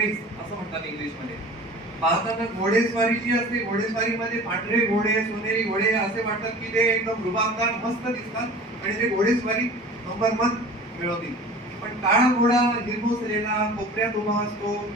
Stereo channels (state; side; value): normal; both; correlation 0.41